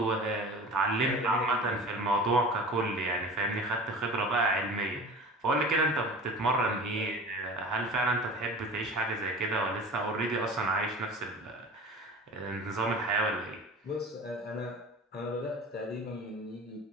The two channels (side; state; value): both; normal; correlation 0.37